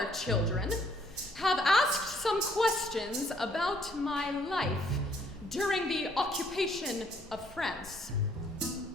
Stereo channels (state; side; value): normal; both; correlation 0.66